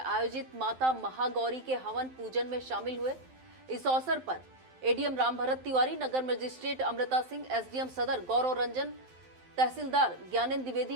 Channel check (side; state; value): left; late; 12 ms